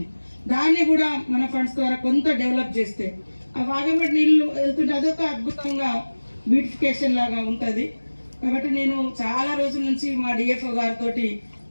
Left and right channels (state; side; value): inverted; both; correlation -1.00